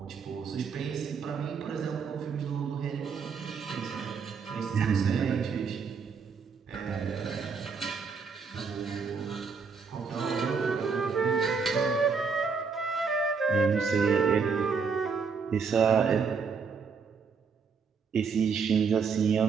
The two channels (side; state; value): left; quieter; 5.5 dB